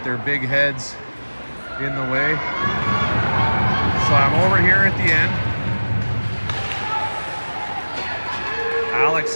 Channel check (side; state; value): both; inverted; correlation -1.00